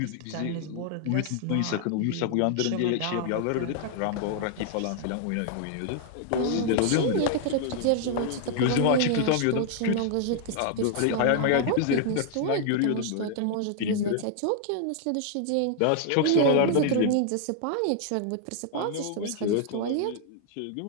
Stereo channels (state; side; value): different; both; correlation -0.01